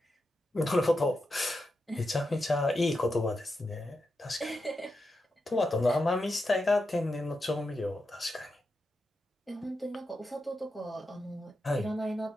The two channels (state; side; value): normal; both; correlation 0.87